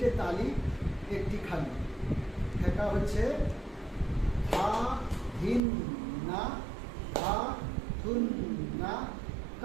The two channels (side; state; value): left; drops out; at 5.6 s